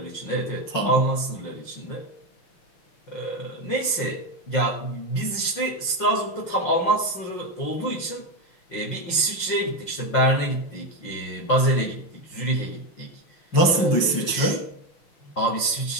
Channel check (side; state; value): right; late; 5.7 ms